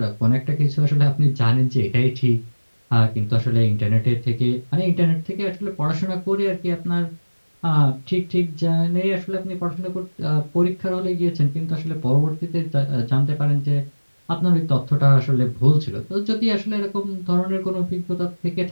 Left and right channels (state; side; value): inverted; both; correlation -1.00